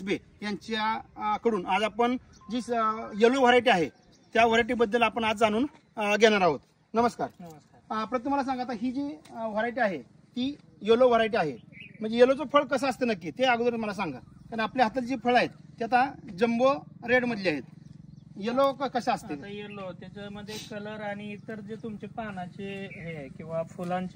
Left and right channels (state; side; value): identical; both; correlation 1.00